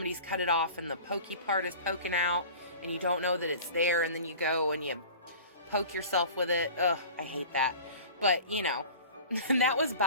cut it off and the pokey part is poking out and you don't know that it's there, and then you go and you poke yourself with it. Ugh, I hate that. But, you know, that was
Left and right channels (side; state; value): both; inverted; correlation -0.40